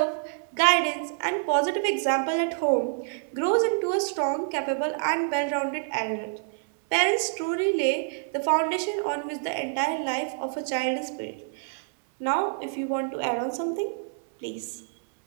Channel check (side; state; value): left; silent; 60 dB below the other